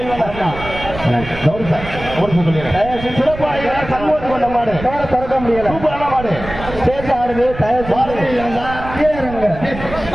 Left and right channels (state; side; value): noise; right; rumble, 11 dB below the sound